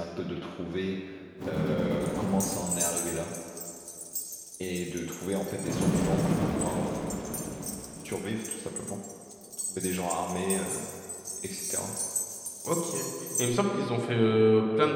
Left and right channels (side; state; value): both; identical; correlation 1.00